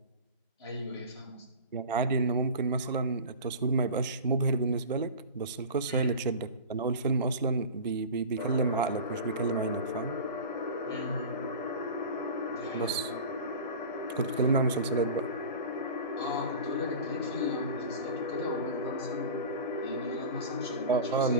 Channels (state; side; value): inverted; both; correlation -0.33